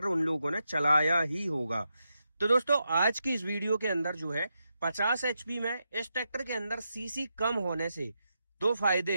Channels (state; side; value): inverted; both; correlation -0.85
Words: उन लोगों ने चलाया ही होगा। तो दोस्तों, आज की इस वीडियो के अंदर जो है 50 एचपी में इस ट्रैक्टर के अंदर सीसी कम होने से दो फायदे